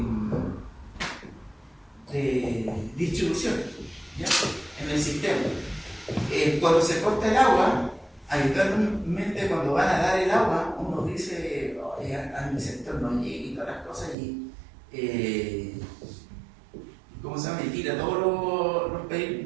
distribución, ¿ya? En el sistema. Cuando se corta el agua, habitualmente cuando van a dar el agua, uno dice, a mi sector no llegue y todas las cosas y ¿cómo se llama? Y tira todos los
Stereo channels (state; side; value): drops out; left; at 14.2 s